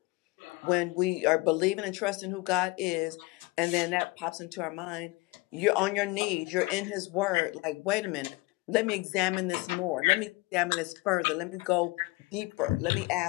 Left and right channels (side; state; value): right; quieter; 23.2 dB